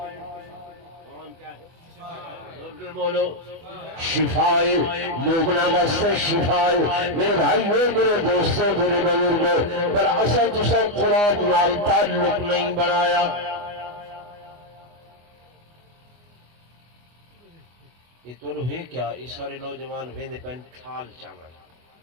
بولو شفائے، مومنا واسطے شفائے. میرے بھائیوں، میرے دوستوں، میرے بزرگوں، پر اصل تسا قرآن نال تعلق نہیں بنایا. یہ تو ہے کیا یہ سارے نوجوان ویندے پین تھال چاول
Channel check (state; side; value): late; left; 24 ms